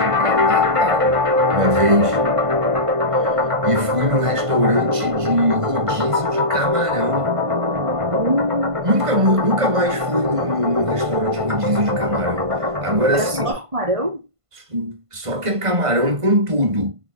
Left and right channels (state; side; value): late; left; 1.5 ms